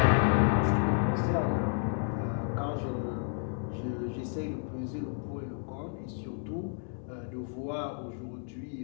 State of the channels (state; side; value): silent; right; 57 dB below the other